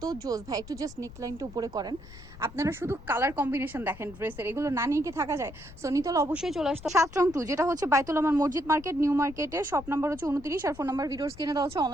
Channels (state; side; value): noise; left; rumble, 17 dB below the sound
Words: জোস ভাই। একটু জাস্ট নেকলাইনটা উপরে করেন, আপনারা শুধু কালার কম্বিনেশন দেখেন ড্রেসের, এগুলো না নিয়ে কি থাকা যায়? সো নিতল অবশ্যই চলে আসতো 7 রং 2, যেটা হচ্ছে বাইতুল আমার মসজিদ মার্কেট, নিউ মার্কেটে। শপ নাম্বার হচ্ছে 29, আর ফোন নাম্বার ভিডিওস কিনে দেওয়া হচ্ছে।